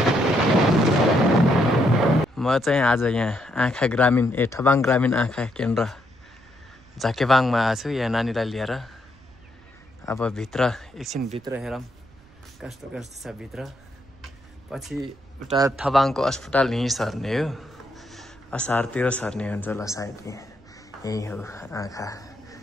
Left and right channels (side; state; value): right; noise; rumble, 27 dB below the sound